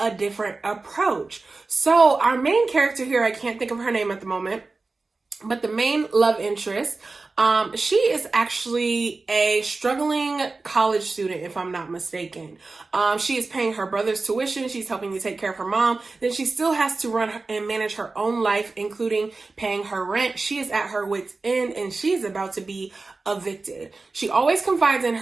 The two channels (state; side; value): quieter; left; 3.7 dB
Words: different approach. So our main character here, I can't think of her name at the moment, but the main love interest, she is actually a struggling college student, if I'm not mistaken. She is paying her brother's tuition. She's helping to take care of her mom. Then she still has to run and manage her own life, including paying her rent. She is at her wit's end, and she's about to be evicted. She always confides in